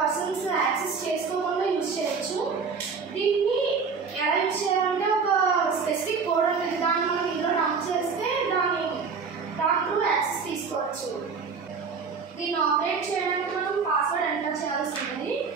access చేసుకోకుండా use చేయొచ్చు. దీన్ని ఎలా use చేయాలంటే ఒక specific code ఉంటుంది, దాన్ని మనం ఇందులో డంప్ చేస్తే దాని త్రూ యాక్సెస్ తీసుకోవచ్చు. దీన్ని ఆపరేట్ చేయడానికి మనం పాస్వర్డ్ ఎంటర్ చేయాల్సి ఉంటుంది.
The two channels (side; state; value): left; quieter; 5.3 dB